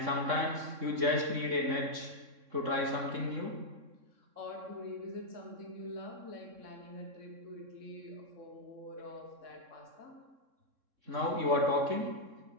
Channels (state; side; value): late; left; 3.6 ms